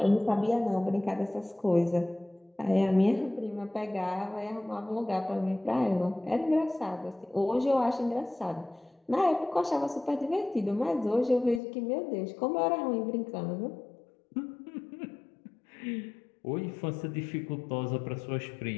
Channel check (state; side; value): drops out; right; at 11.6 s